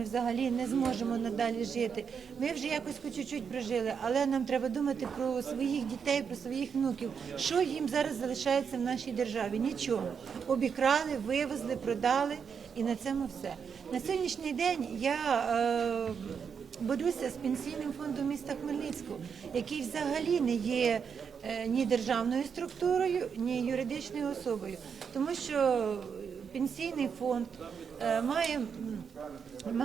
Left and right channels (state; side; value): quieter; left; 6.6 dB